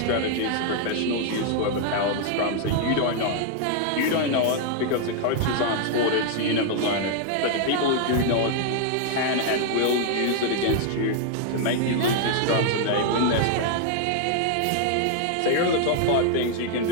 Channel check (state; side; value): different; both; correlation 0.00